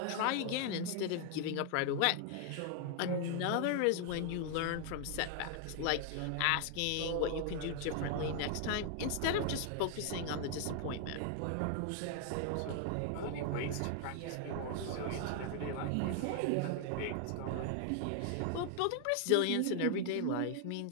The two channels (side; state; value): both; different; correlation 0.00